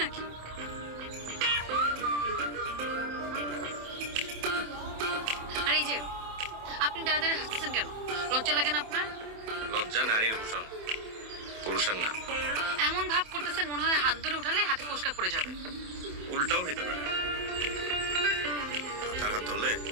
আর এই যে আপনি দাঁড়া দাঁড়িয়ে হাসতেছেন কেন? লজ্জা লাগে না আপনার? লজ্জা নারীর ভূষণ, পুরুষের না। এমন ভাব করতেছেন মনে হয় হাত ধরে উঠালে হাতে ফোসকা পড়ে যাবে। উল্টাও হইতে পারে। তার হাত ধরলে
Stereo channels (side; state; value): left; late; 27 ms